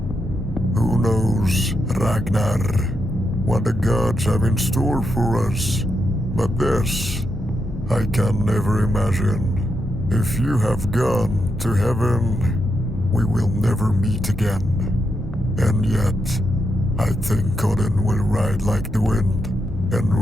Who knows, Ragnar, what the gods have in store for us? But this, I can never imagine. If you have gone to heaven, we will never meet again. And yet, I think Odin will ride like the wind and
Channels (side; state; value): both; normal; correlation 0.83